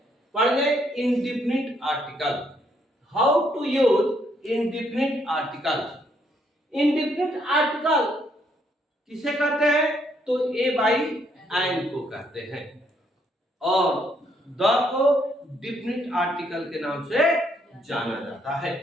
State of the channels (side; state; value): both; normal; correlation 0.71